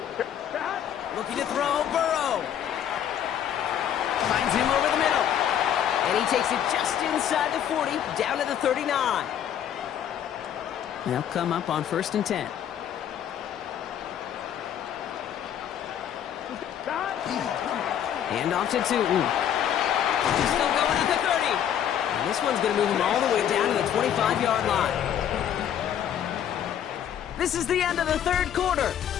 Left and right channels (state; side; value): quieter; right; 9.8 dB